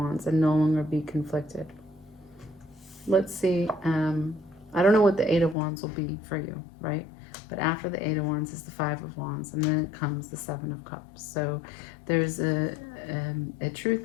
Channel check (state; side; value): drops out; right; at 5.6 s